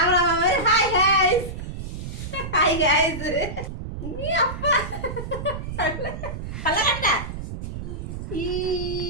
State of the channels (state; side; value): noise; right; rumble, 7 dB below the sound